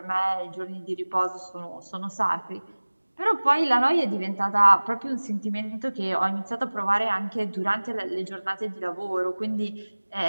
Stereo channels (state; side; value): inverted; both; correlation -1.00